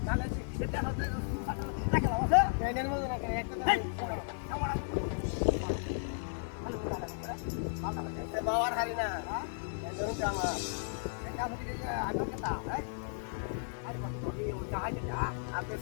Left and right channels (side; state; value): right; silent; 55 dB below the other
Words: তাহলে সেটা হচ্ছে রাখা আছে ট্রেনের মধ্যে রাখা একটা বাবার হারি না ধরুন জামা এটা হচ্ছে আগে কথা হ্যাঁ আরে বাবা তুমি ওটা হাই যা আপনি